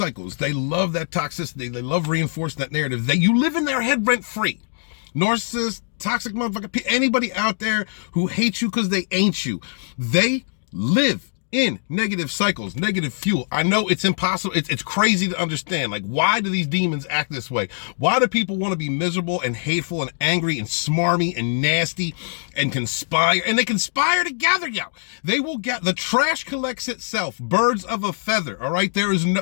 They love that toxicity. They love reinforcing that narrative. You live in their head rent free. Narcissists, toxic motherfucker, anybody out there who hates you because they ain't you. They live in negative cycles, negative fuel. I know it's impossible. It's crazy to understand. Like, why do these demons act this way? Why do people want to be miserable and hateful and angry and smarmy and nasty and conspire? And they conspire together, yo. They will get, the trash collects itself. Birds of a feather, all right? There is no,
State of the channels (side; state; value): right; silent; digital silence